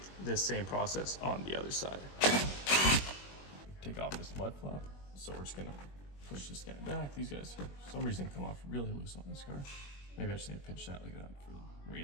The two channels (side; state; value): right; late; 21 ms